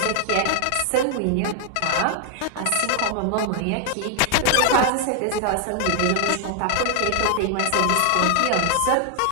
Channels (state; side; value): different; both; correlation 0.00